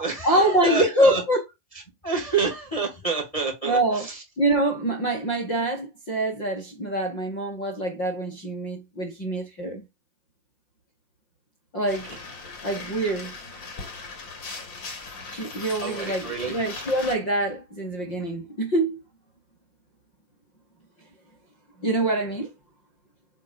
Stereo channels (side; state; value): right; late; 5.7 ms